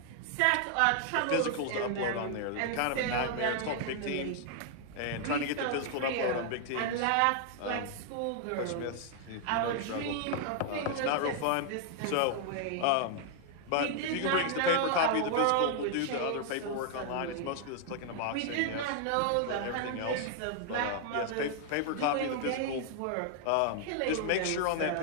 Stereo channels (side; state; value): both; different; correlation 0.00